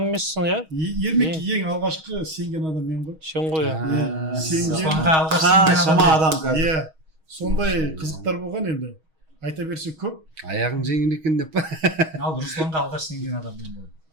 емессің, иә? Ермек ең алғашқы сенген адам мен ғой. Сен ғой, иә. Шама адам қазір. Иә. Сондай қызықтар болған енді. Айта берсе көп. Аяғың жеңіл екен деп па? Ал Русланға алғаш сенген адам мен болдым.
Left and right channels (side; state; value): left; late; 6.3 ms